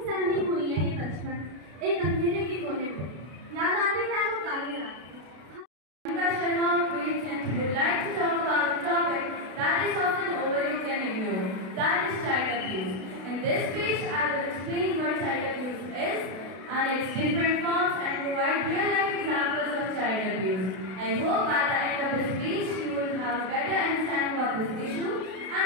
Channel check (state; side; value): late; left; 32 ms